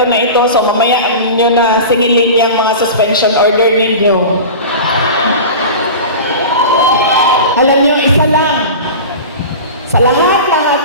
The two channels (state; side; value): inverted; both; correlation -0.32